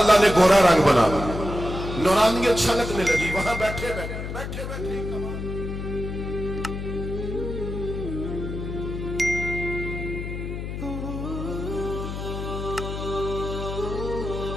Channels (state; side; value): noise; left; hum, 6 dB below the sound